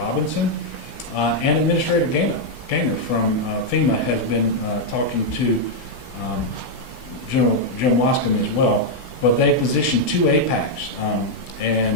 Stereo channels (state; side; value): late; right; 16 ms